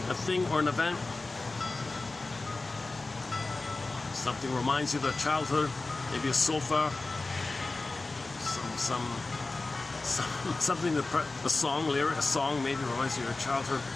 a thing, or an event. Something reminds you of your childhood, maybe a sofa, something, a song lyric, a song maybe reminds you of your childhood,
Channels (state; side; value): quieter; right; 3.3 dB